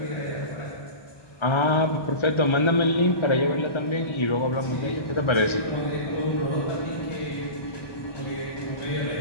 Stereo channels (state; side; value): late; right; 1.3 ms